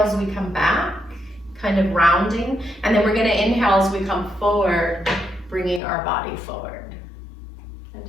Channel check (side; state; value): right; drops out; at 5.8 s